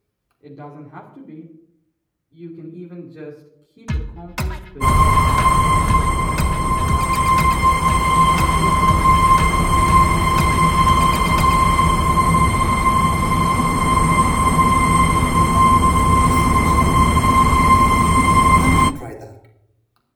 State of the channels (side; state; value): both; identical; correlation 1.00